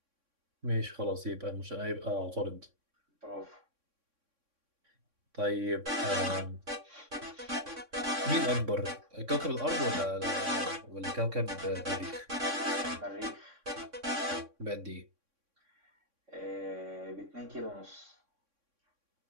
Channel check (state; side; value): late; left; 3.6 ms